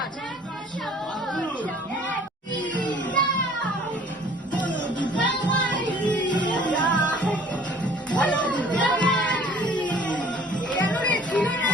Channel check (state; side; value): normal; both; correlation 0.52